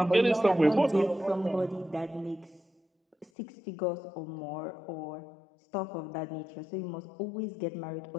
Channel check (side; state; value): right; drops out; at 3.3 s